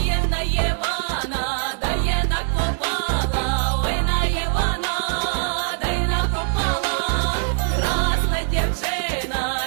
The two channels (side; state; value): left; silent; digital silence